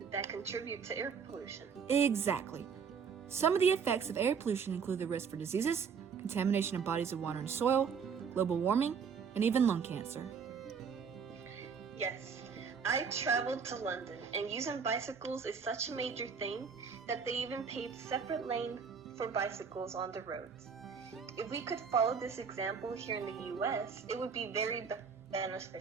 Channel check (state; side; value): quieter; left; 6.2 dB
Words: that contribute to air pollution. Exactly. Some of the effects of air pollution include the risk for diseases, contamination of bodies of water and soil, global warming, and even lung cancer. Yes, I traveled to London, and using bicycles is such a major thing that they even paved separate lanes for bicycles on the roads. If we could follow this example here in the U.S., it would be very